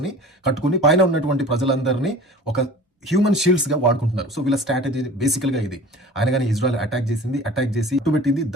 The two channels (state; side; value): normal; both; correlation 0.41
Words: ని కట్టుకుని పైన ఉన్నటువంటి ప్రజలందరినీ ఒక హ్యూమన్ షీల్డ్స్ గా వాడుకుంటున్నారు. సో వీళ్ళ స్ట్రాటజీ బేసికల్ గా ఇది. ఆయన కానీ ఇజ్రాయెల్ అటాక్ చేసి ఇట్టుబెట్టింది.